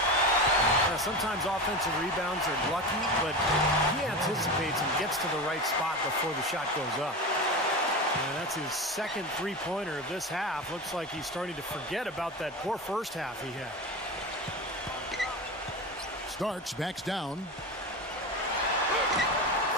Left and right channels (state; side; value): normal; both; correlation 0.24